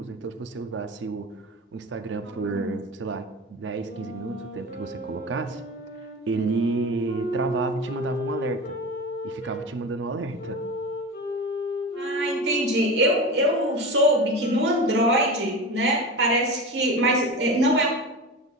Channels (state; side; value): normal; both; correlation 0.28